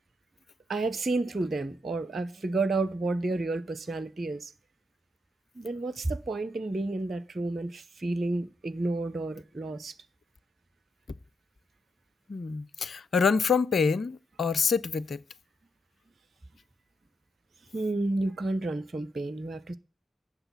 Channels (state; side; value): normal; both; correlation 0.81